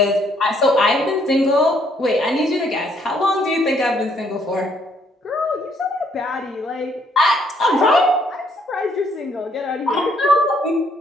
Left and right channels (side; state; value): both; normal; correlation 0.68